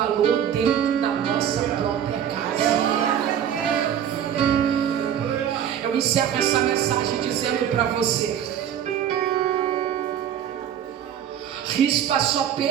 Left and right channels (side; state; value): left; quieter; 9.5 dB